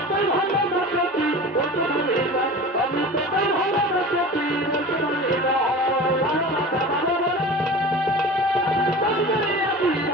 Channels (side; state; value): both; normal; correlation 0.36